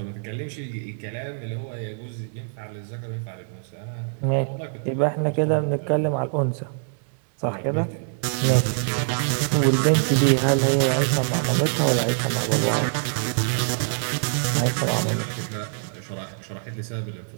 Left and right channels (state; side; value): silent; left; 61 dB below the other